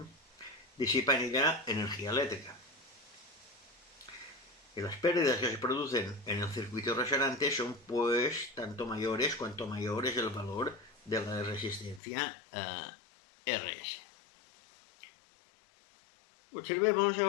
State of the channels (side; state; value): right; drops out; at 12.0 s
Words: disipa en ella energía eléctrica. Y las pérdidas que se producen en el circuito resonante son pues tanto mayores cuanto mayor es el valor de la resistencia RS. Observemos